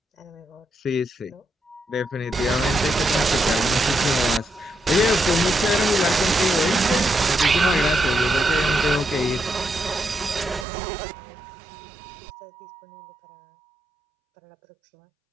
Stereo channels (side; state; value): left; drops out; at 10.7 s